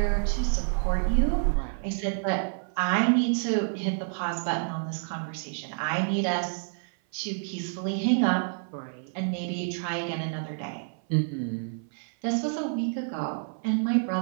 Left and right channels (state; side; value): silent; left; 57 dB below the other